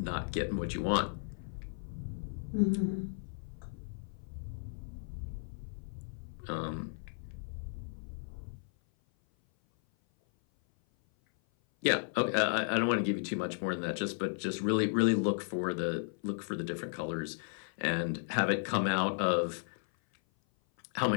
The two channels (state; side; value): silent; right; 55 dB below the other